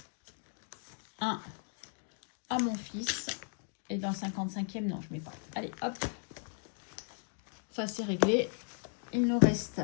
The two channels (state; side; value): silent; right; 54 dB below the other